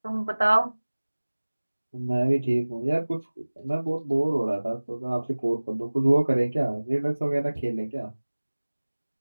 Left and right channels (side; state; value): both; inverted; correlation -1.00